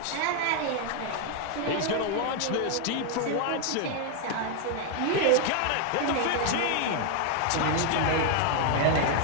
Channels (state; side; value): different; both; correlation 0.00